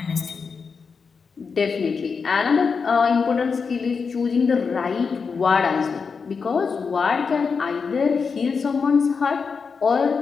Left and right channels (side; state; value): right; quieter; 5.4 dB